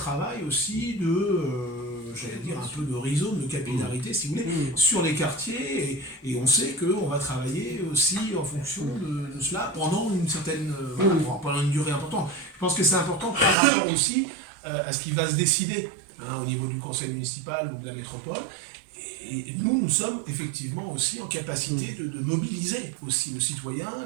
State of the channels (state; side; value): drops out; left; at 13.6 s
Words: aussi j'allais dire, un peu de rhizome, de capillarité, si vous voulez, sur les quartiers. Et on sait qu'on va travailler aussi en fonction de cela pendant une certaine, pendant une durée importante. Je pense que c'est important par rapport aussi à ce qui va se décider au niveau du conseil municipal ou de la métropole. Et nous sommes effectivement aussi en capacité de mobiliser aussi